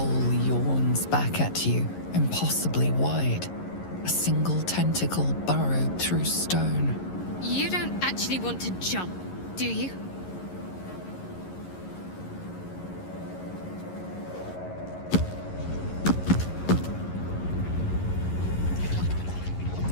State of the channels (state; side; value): late; right; 11 ms